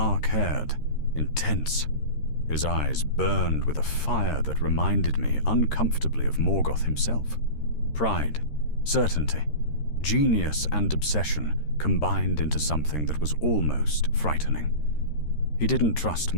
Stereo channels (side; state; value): right; late; 13 ms